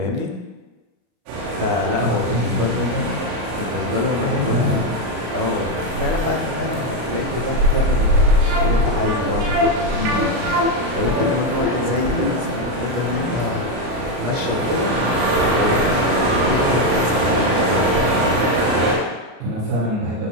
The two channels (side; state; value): left; late; 33 ms